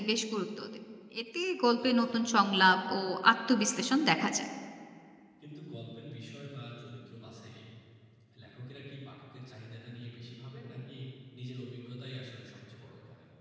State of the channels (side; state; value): both; identical; correlation 1.00